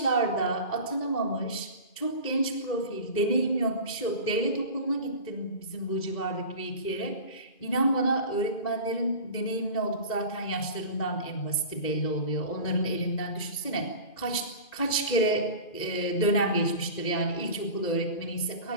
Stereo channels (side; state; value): right; late; 2.4 ms